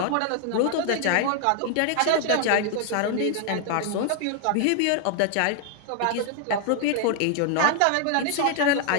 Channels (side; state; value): both; different; correlation 0.00